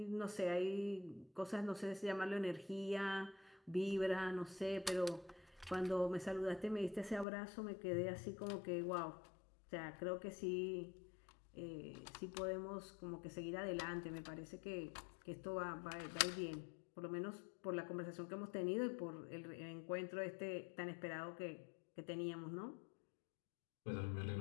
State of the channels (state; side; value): drops out; right; at 7.2 s